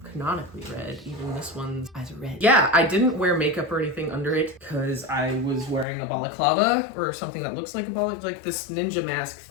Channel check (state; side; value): drops out; right; at 5.9 s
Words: canonically red. Even this one's eyes are red. Yeah, I didn't wear makeup or anything under it because I was wearing a balaclava or something that looks like a balaclava, like this ninja mask